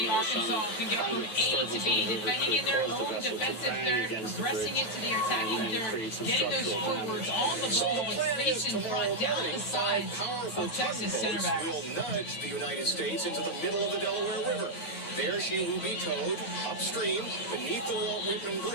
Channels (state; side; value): late; right; 8.8 ms